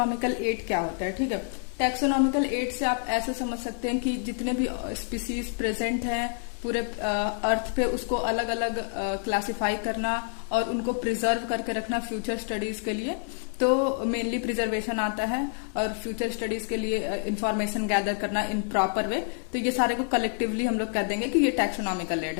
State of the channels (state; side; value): silent; right; 60 dB below the other